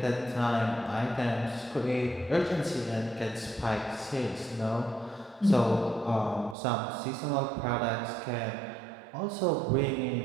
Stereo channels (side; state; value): left; drops out; at 6.6 s